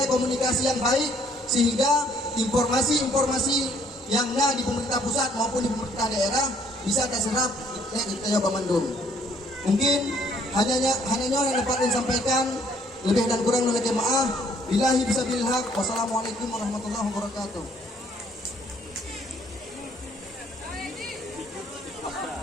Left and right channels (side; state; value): both; normal; correlation 0.64